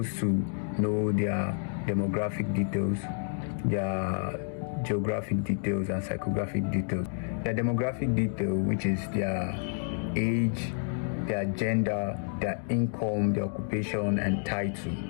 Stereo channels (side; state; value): right; silent; digital silence